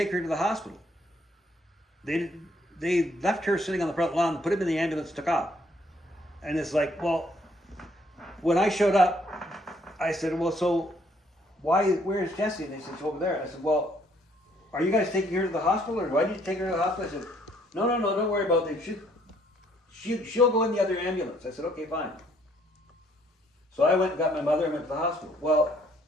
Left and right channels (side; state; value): both; normal; correlation 0.66